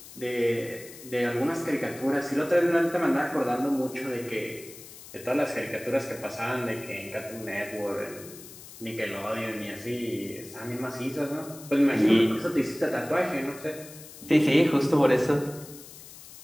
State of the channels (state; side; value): noise; left; hiss, 17 dB below the sound